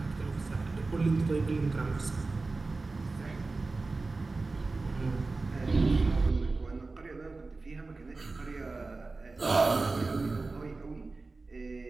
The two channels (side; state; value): left; quieter; 3.6 dB